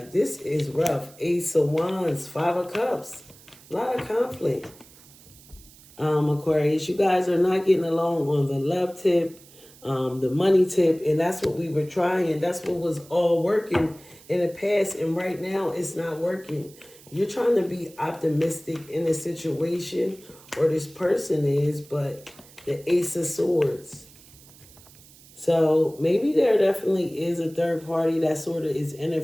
this is rough. Ace of Wands, Five of Cups. A lot of conflict. Aquarius, you guys are not getting along on the love tip, the money tip, and that's what we were trying. That's what was all working in the past, and right now it's not working. You're trying to be optimistic in a situation, or this person is, but the Ace of Swords. So maybe there definitely is a third party that sort of is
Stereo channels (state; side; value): noise; right; hiss, 23 dB below the sound